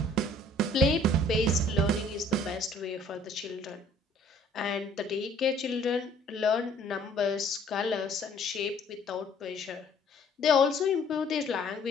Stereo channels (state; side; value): normal; both; correlation 0.57